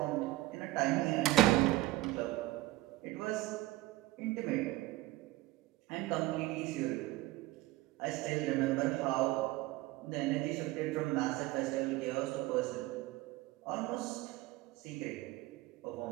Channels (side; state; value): left; quieter; 17.9 dB